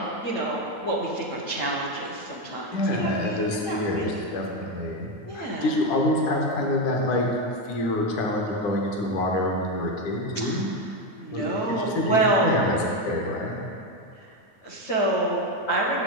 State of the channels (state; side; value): late; right; 9.0 ms